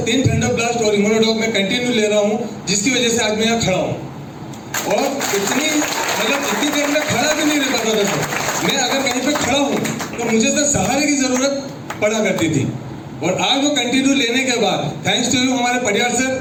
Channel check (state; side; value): identical; both; correlation 1.00